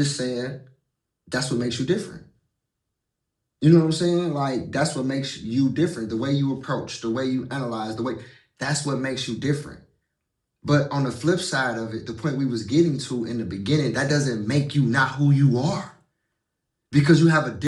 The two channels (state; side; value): identical; both; correlation 1.00